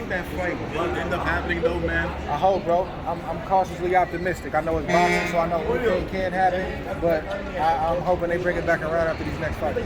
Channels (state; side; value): identical; both; correlation 1.00